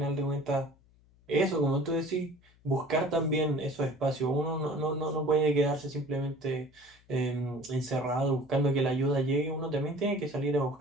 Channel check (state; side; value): noise; left; hum, 30 dB below the sound